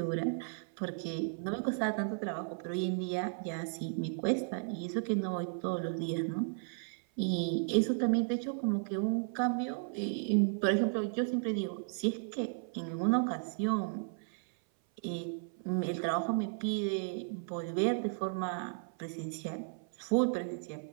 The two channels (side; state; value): left; silent; 55 dB below the other